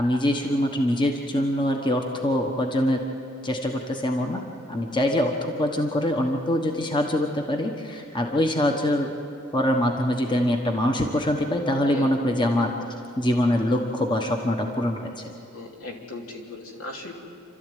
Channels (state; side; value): normal; both; correlation 0.71